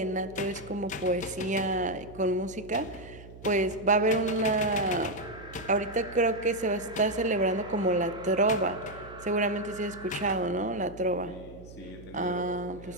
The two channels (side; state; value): right; noise; hum, 17 dB below the sound